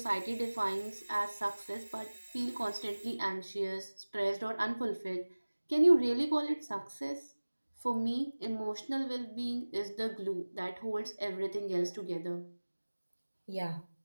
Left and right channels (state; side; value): inverted; both; correlation -1.00